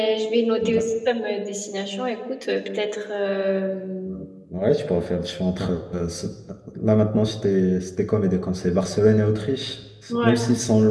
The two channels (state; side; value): identical; both; correlation 1.00